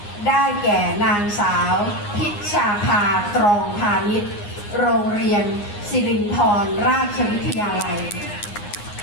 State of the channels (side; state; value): right; late; 9.7 ms